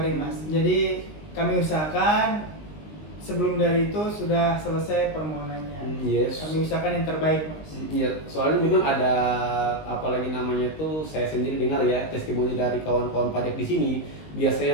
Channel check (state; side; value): late; right; 20 ms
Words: Mas. Jadi kami usahakan sebelum dari itu sudah selesai permohonannya. Yes. Kami usahakan yang terbaik Mas. Iya, soalnya memang ada apalagi namanya tuh saya sendiri dengar ya testimoni dari kawan-kawan pajak di sini.